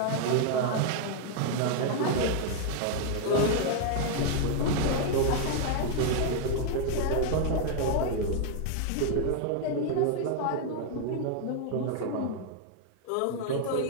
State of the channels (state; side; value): different; both; correlation 0.00